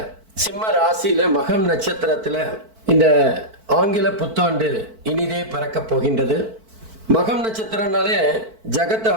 சிம்ம ராசியில் மகம் நட்சத்திரத்தில் இந்த ஆங்கில புத்தாண்டு இனிதே பிறக்க போகின்றது. மகம் நட்சத்திரம்னாலே ஜகத்தை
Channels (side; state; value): left; late; 4.5 ms